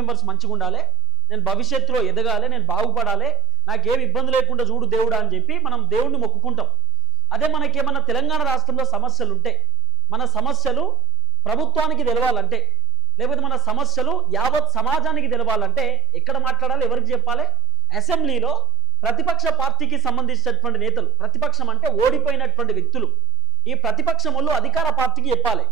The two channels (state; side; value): normal; both; correlation 0.80